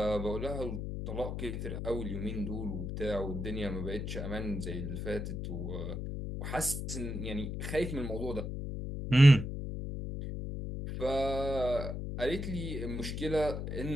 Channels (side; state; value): left; noise; hum, 4 dB below the sound